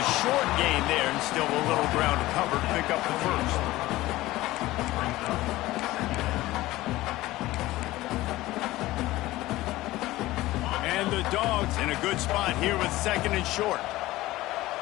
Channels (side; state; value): right; quieter; 17.5 dB